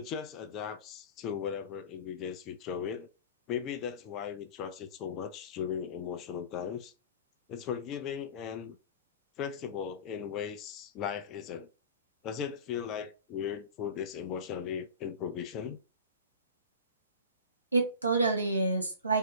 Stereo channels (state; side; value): inverted; both; correlation -0.35